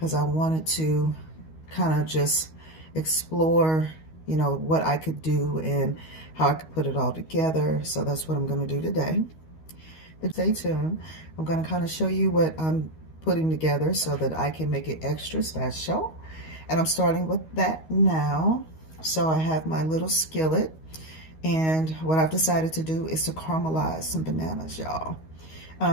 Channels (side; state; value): right; late; 13 ms